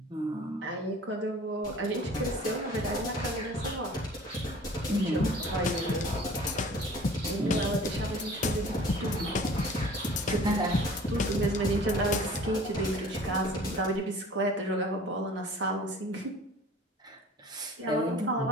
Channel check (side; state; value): both; normal; correlation 0.47